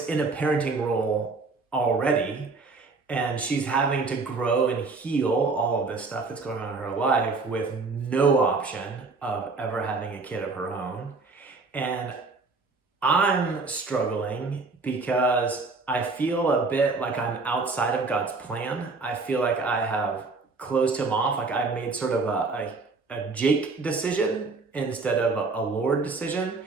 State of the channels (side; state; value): left; quieter; 4.0 dB